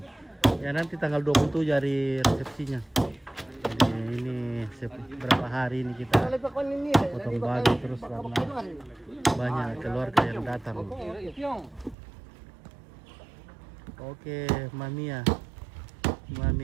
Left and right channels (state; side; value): drops out; left; at 12.0 s